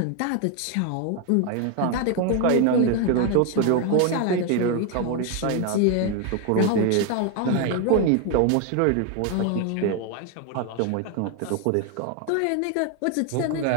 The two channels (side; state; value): both; different; correlation 0.01